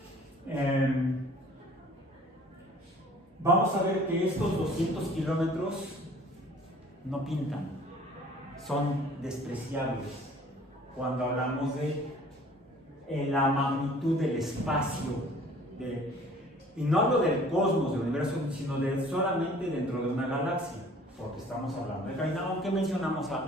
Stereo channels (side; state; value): both; normal; correlation 0.51